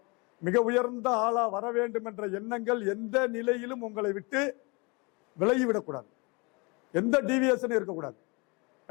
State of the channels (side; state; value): right; quieter; 28.2 dB